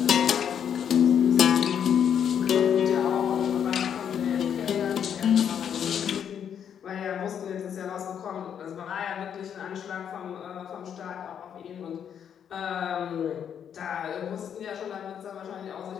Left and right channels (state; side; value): quieter; right; 8.5 dB